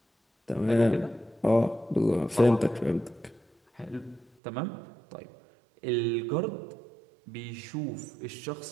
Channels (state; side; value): drops out; left; at 4.3 s